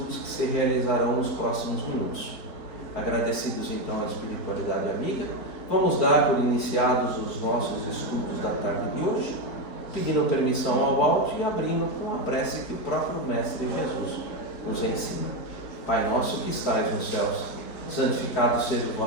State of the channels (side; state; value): right; late; 4.4 ms